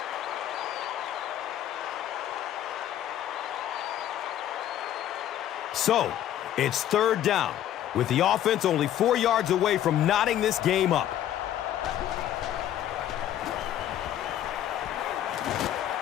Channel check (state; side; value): quieter; right; 11.6 dB